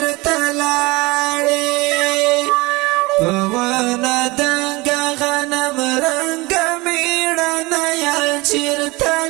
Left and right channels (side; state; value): left; quieter; 23.2 dB